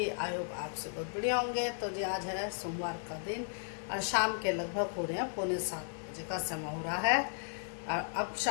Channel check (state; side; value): silent; right; digital silence